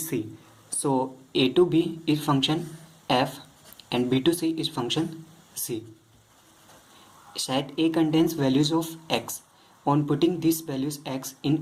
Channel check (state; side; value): identical; both; correlation 1.00